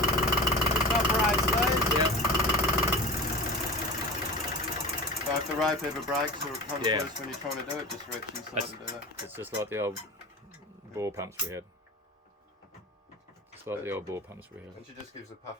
It operates these. Yeah. So if the rope ever breaks or it comes Yeah. loose when you're trying to do it, just reach inside That's- and do that. It's just like the old bore pumps we had. Just like the old bore pumps we had. And she just gives a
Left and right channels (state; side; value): normal; both; correlation 0.34